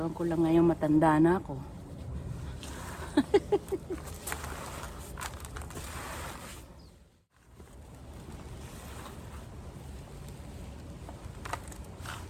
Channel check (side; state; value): both; identical; correlation 1.00